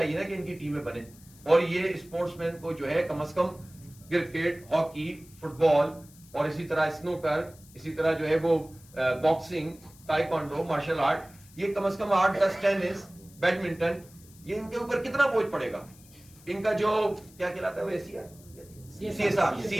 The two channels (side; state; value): left; noise; hiss, 24 dB below the sound